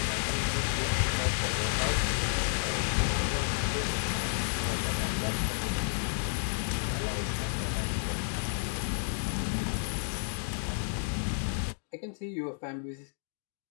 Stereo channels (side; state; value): right; silent; digital silence